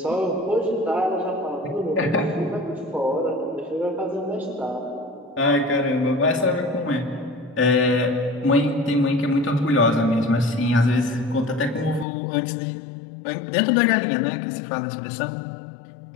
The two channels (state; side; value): drops out; right; at 12.1 s